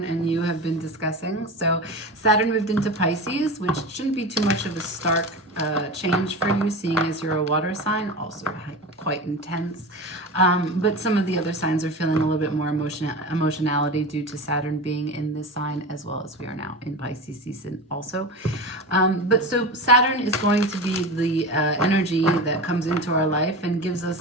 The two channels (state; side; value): normal; both; correlation 0.27